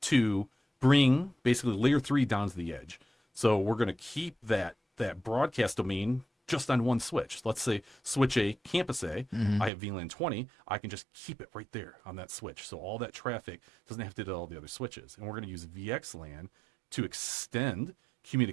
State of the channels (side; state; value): left; drops out; at 9.7 s